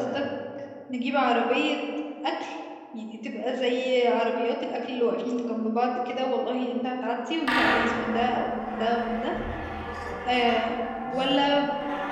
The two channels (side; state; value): both; identical; correlation 1.00